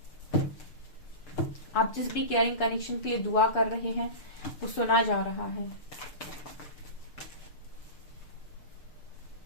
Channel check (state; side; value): late; right; 6.6 ms